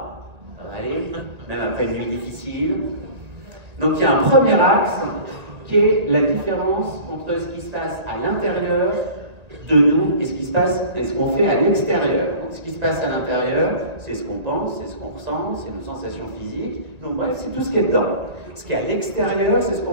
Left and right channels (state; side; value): late; left; 1.9 ms